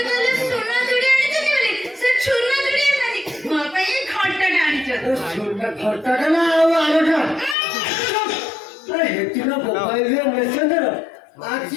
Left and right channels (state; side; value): drops out; right; at 7.6 s